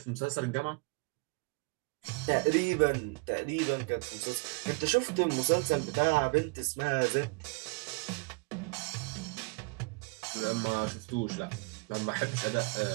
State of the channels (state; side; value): quieter; left; 31.2 dB